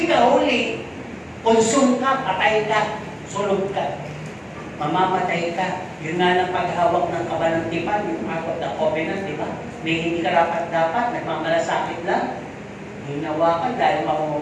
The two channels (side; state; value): both; identical; correlation 1.00